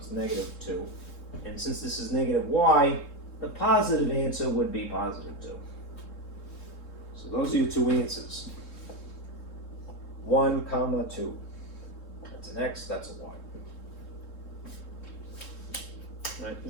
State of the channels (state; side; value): late; right; 3.7 ms